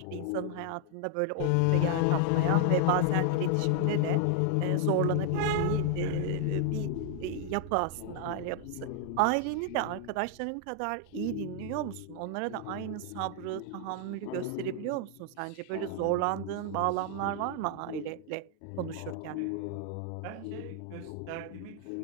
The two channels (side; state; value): both; different; correlation 0.00